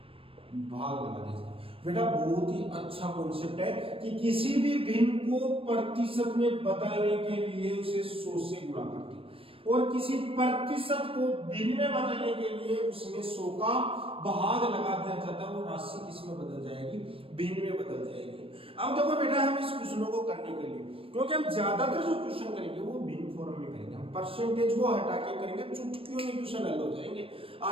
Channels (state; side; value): late; left; 0.27 ms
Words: भाग लगा दिया जाता है। बेटा बहुत ही अच्छा कॉन्सेप्ट है कि किसी भी भिन्न को प्रतिशत में बदलने के लिए उसे 100 से गुणा करते हैं, और किसी प्रतिशत को भिन्न में बदलने के लिए उसमें 100 का भाग लगा दिया जाता है। वो राशि किस में बदल जाएगी? भिन्न में बदल जाएगी। अब देखो बेटा हम इस क्वेश्चनों को करने के लिए, क्योंकि हम ज्यादातर जो क्वेश्चन करेंगे वो भिन्न फॉर्म में करेंगे, हम परसेंटेज को हटा के करेंगे, चुटकियों में क्वेश्चन हल हो जाएंगे,